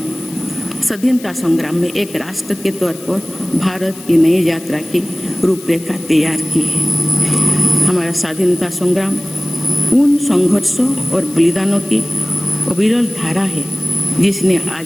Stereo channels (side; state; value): left; noise; hiss, 18 dB below the sound